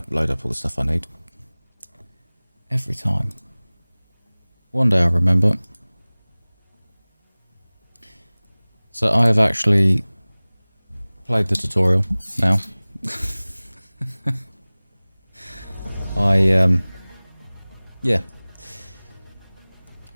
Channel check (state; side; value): inverted; both; correlation -1.00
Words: load up all the stuff I need. Every time. One day I'll remember. So I have actually played the tutorial now. Yeah.